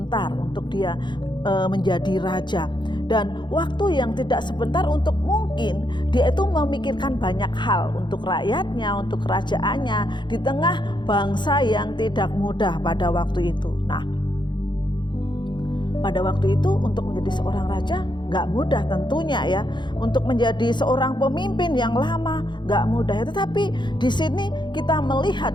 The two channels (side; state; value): right; late; 0.22 ms